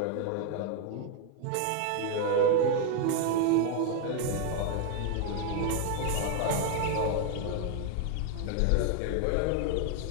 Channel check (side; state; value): both; different; correlation 0.00